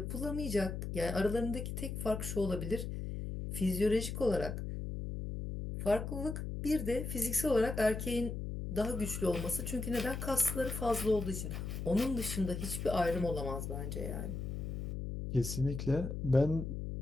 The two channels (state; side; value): noise; left; hum, 5 dB below the sound